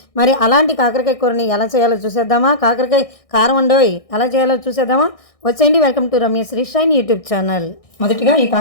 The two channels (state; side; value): late; right; 1.6 ms